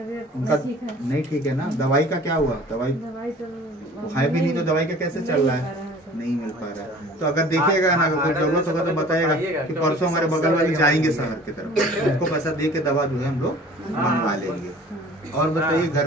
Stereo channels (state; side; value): normal; both; correlation 0.47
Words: ठीक है ना? दवाई का क्या हुआ? दवाई है भी नहीं तो दवाई का कैसे चल रहा है? नहीं मिल पा रहा है। तो अगर देखिएगा ना, अगर कोई जरूरत होगा तो बताएगा कि परसों हमारे बगल वाली जाएंगे शहर की तरफ, उनको पैसा दे के दवा जो है हम लोग मंगवा लेंगे। और बताइए घर